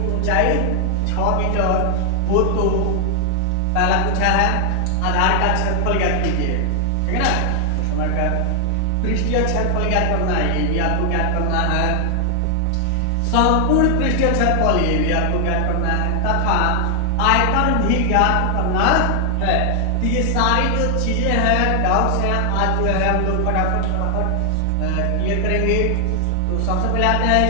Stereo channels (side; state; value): both; different; correlation 0.00